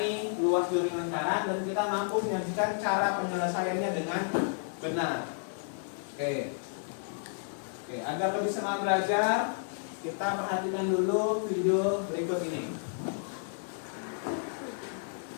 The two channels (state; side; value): silent; right; digital silence